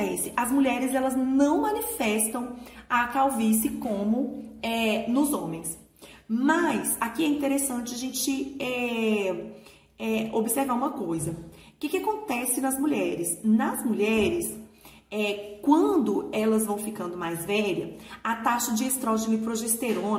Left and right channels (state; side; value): identical; both; correlation 1.00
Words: As mulheres, elas não manifestam a calvície como nos homens. Mas, aqui é interessante a gente observar uma coisa. O que acontece nas mulheres? Nas mulheres, quando elas vão ficando mais velhas, a taxa de estrógeno e